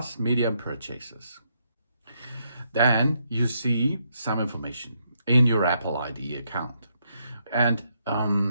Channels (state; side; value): inverted; both; correlation -0.77